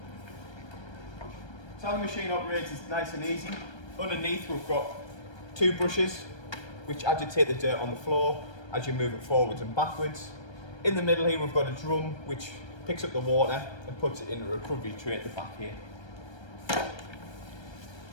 So how the machine operates is nice and easy. Underneath we've got two brushes which agitate the dirt on the floor as you move it forwards and backwards. In the middle here we've got a drum which picks up the water and puts it in a recovery tray at the back here.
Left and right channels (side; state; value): right; late; 1.3 ms